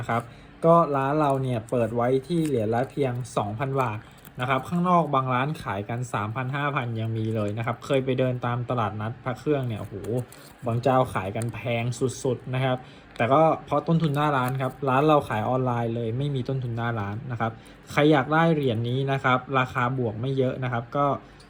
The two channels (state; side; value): identical; both; correlation 1.00